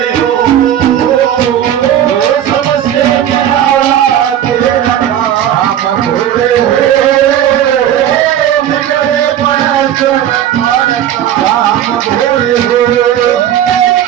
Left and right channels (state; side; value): quieter; left; 10.8 dB